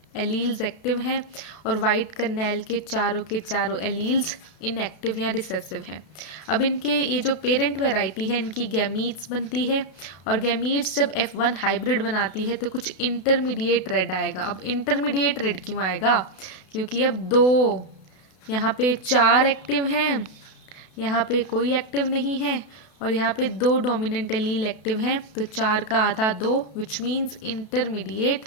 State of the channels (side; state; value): right; late; 32 ms